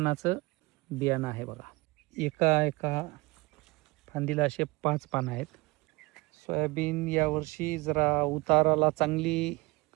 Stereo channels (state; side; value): quieter; left; 23.8 dB